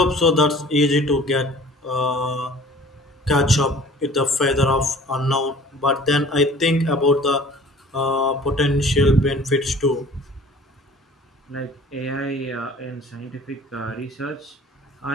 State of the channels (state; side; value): normal; both; correlation 0.48